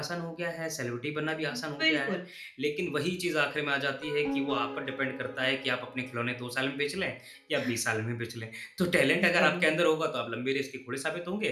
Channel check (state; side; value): identical; both; correlation 1.00